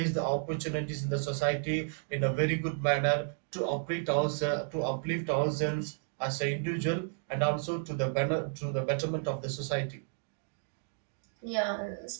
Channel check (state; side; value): silent; left; digital silence